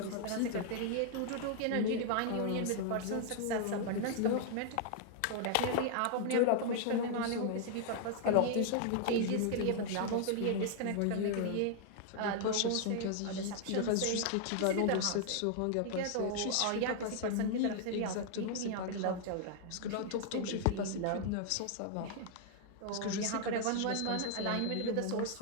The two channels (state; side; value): different; both; correlation 0.00